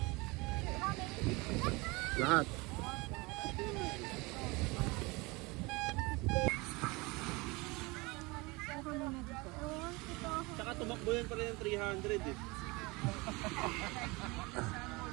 Lahat. Tsaka tumakbo yan pala yung 300 eh.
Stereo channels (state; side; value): quieter; left; 25.0 dB